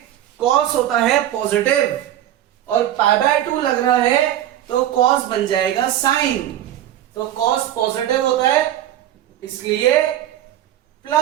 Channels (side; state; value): left; quieter; 12.3 dB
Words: cos होता है पॉजिटिव और पाई बाय 2 लग रहा है तो cos बन जाएगा साइन। तो cos पॉजिटिव होता है इसलिए